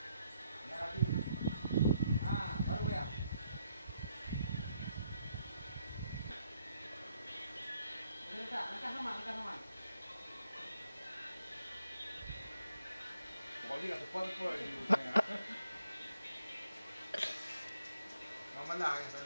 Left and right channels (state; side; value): inverted; both; correlation -0.74